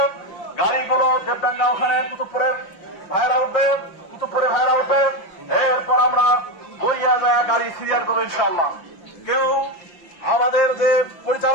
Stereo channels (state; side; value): late; right; 5.7 ms